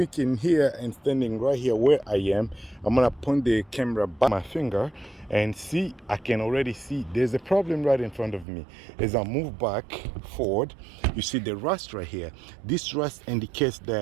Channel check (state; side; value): drops out; left; at 8.5 s